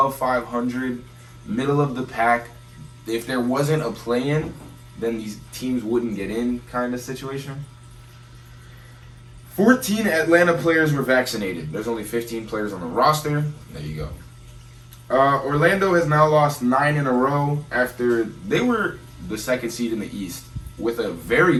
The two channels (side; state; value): both; identical; correlation 1.00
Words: 500, middle of the pack. If there wasn't a play-in, then these teams wouldn't get in kind of situation. 14 Atlanta players were vaccinated. There's only 15 players on the roster. There you go. Orlando has now lost 9 in a row after they were the second seed in the East with a very